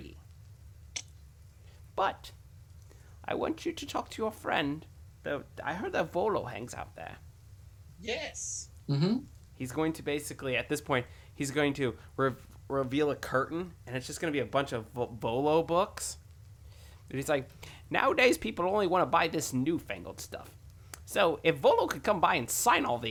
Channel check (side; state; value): both; identical; correlation 1.00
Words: But I want you to talk to your friend. I heard that Volo hangs out there. Yes. He's going to basically, at this point, he's going to reveal a curtain, and it's just going to be a bunch of Volo books. And he's like, nowadays people only want to buy this newfangled stuff. So if Volo could come by and sign all